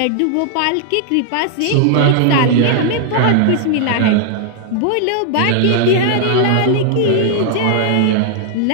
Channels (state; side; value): different; both; correlation -0.01